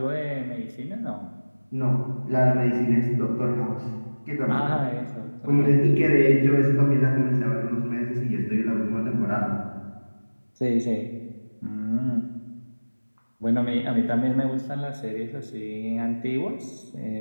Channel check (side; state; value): both; inverted; correlation -1.00